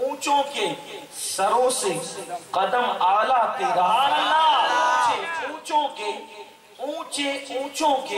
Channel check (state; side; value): identical; both; correlation 1.00